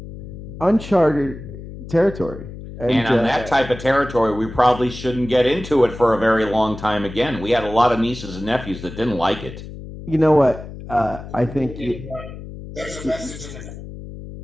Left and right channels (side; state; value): left; noise; hum, 12 dB below the sound